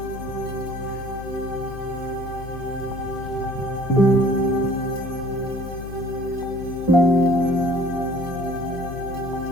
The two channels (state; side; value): noise; left; hum, 11 dB below the sound